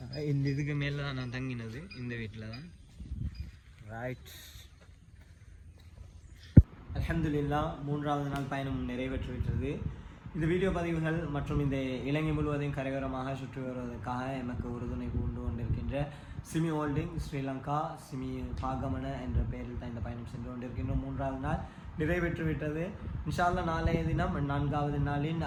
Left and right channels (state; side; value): identical; both; correlation 1.00